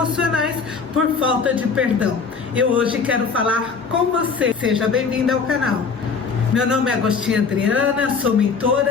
por falta de perdão. Eu hoje quero falar com você. Seja bem-vindo ao canal. Meu nome é Agostinha Adriana, sou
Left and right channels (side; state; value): right; quieter; 5.3 dB